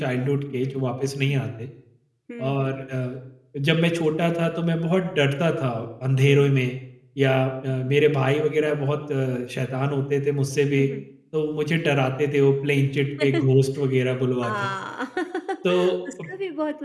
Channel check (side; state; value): both; identical; correlation 1.00